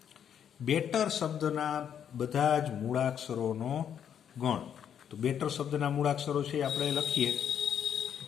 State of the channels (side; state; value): right; quieter; 8.8 dB